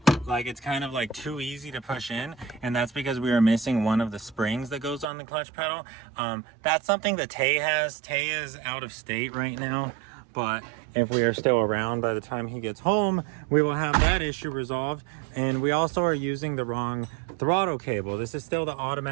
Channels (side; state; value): left; drops out; at 5.1 s